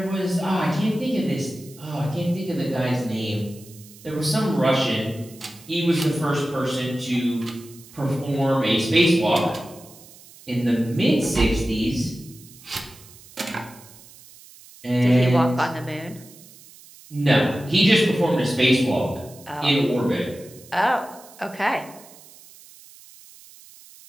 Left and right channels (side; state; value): right; noise; hiss, 22 dB below the sound